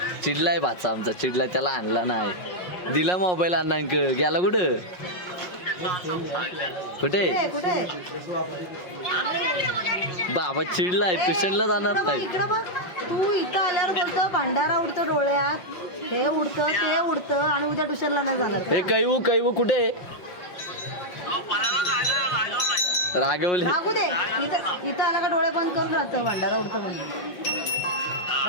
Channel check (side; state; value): right; late; 5.5 ms